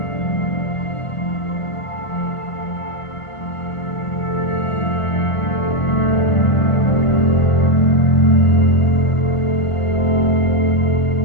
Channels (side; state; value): right; late; 1.5 ms